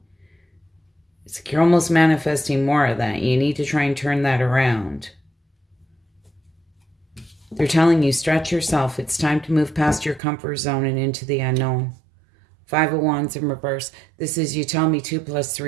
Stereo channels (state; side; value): drops out; left; at 10.2 s